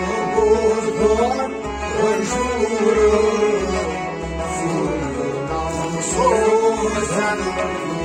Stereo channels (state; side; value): identical; both; correlation 1.00